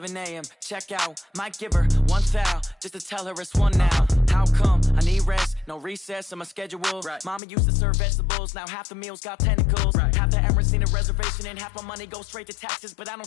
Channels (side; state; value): right; drops out; at 7.4 s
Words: a.m., check out. Might give her one foul, just to tell her it's one now. How come? I need rest, no recess in my schedule. Right. Mama used to serve vegetables, now half the meals got tentacles. Right. Half the Emirates need a reservation and half my money goes straight to taxes. But I